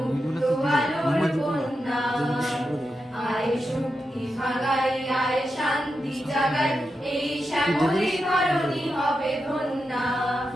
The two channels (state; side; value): normal; both; correlation 0.88